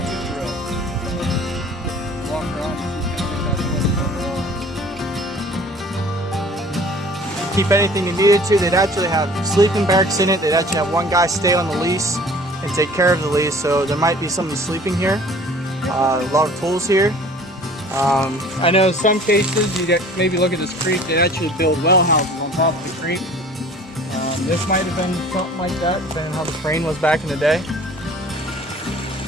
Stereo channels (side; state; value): both; normal; correlation 0.48